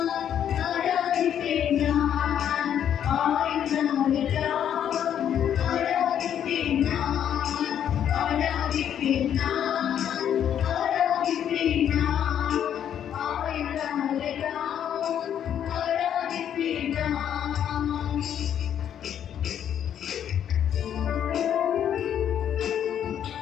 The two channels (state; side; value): quieter; right; 9.5 dB